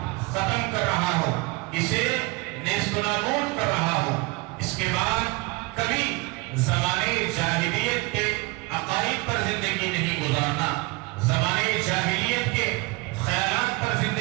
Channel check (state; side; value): quieter; left; 24.7 dB